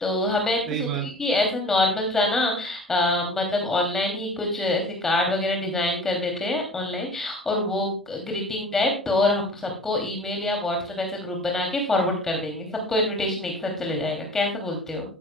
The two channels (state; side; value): normal; both; correlation 0.42